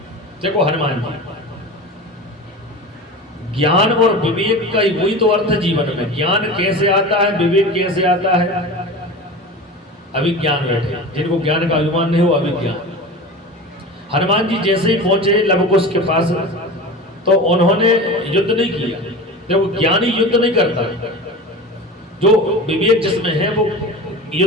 देखो हनुमान जी, ज्ञान और विवेक का ही वही तो अर्थ है जीवन में। ज्ञान कैसे आता है, विवेक कैसे आता है? अभिज्ञान बैठे, जिनको ज्ञान का अभिमान नहीं हो अभिज्ञान। हनुमान जी जैसे ही पहुंचे लवकुश के पास तो उन्होंने युद्ध नहीं किया। देखो ज्ञानी युद्ध नहीं करता, जो विवेक जिसमें है वो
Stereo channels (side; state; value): both; normal; correlation 0.31